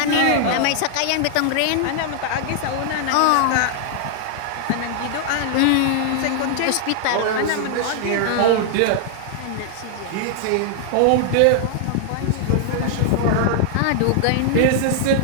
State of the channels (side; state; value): both; different; correlation -0.01